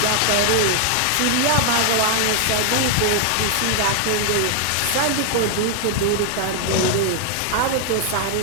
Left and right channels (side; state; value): both; different; correlation 0.00